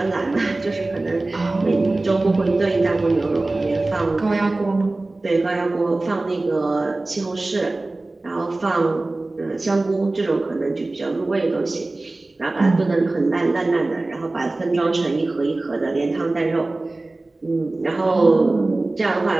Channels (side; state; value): left; quieter; 3.0 dB